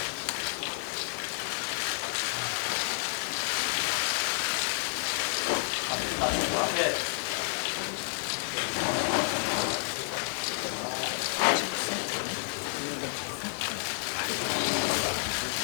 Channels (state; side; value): silent; right; 58 dB below the other